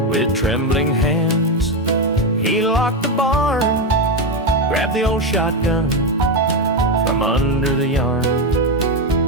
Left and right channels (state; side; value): normal; both; correlation 0.09